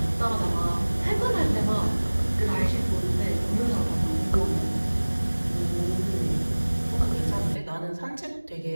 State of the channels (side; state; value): both; inverted; correlation -1.00